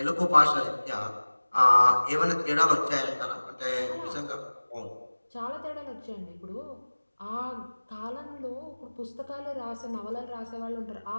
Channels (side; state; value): both; inverted; correlation -1.00